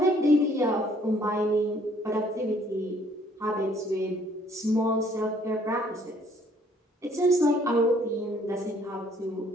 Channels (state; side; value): normal; both; correlation 0.62